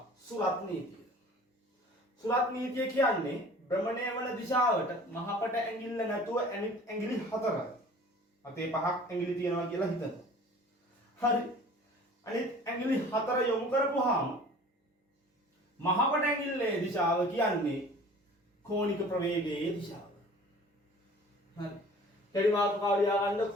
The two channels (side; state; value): both; normal; correlation 0.46